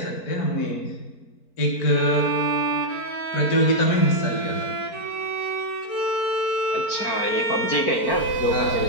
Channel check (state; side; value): late; right; 4.5 ms